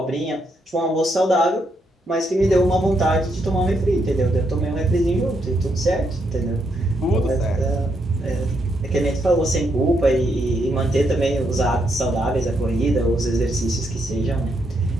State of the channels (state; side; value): normal; both; correlation 0.78